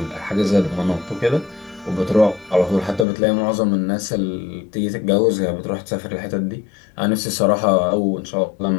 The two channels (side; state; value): right; drops out; at 3.1 s